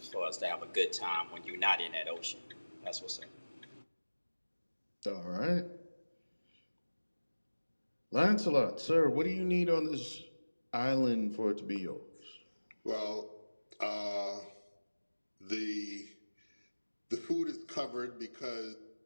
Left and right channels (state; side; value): inverted; both; correlation -1.00